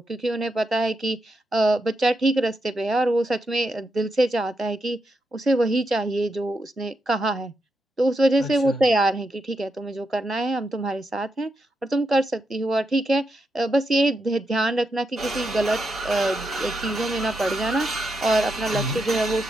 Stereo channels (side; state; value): both; normal; correlation 0.84